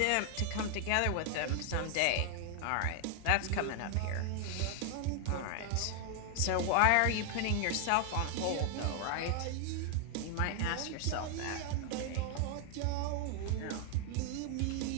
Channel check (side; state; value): both; different; correlation 0.00